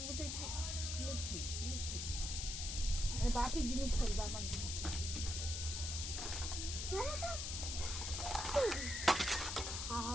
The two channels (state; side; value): noise; left; hiss, 3 dB below the sound